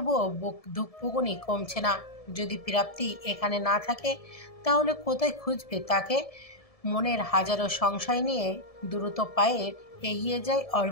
বুক ধুকপুকুনি কমছে না। যদি প্রাপ্তি এখানে না থাকে তাহলে কোথায় খুঁজবে তাকে? মনের হাজারো সংশয় নিয়ে দ্রুত পায়ে এগিয়ে যায়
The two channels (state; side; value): late; right; 1.7 ms